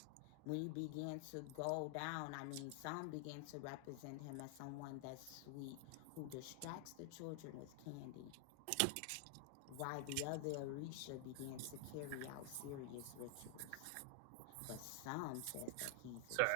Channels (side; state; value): both; different; correlation 0.00